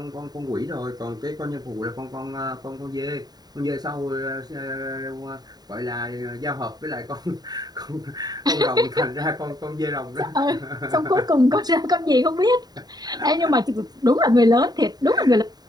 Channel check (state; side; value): late; left; 0.19 ms